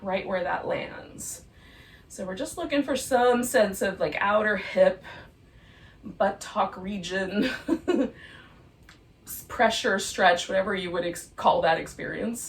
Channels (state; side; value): identical; both; correlation 1.00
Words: right where that lands. So we're just looking for some sense of like outer hip, buttock region, pressure, stretch, whatever you would call that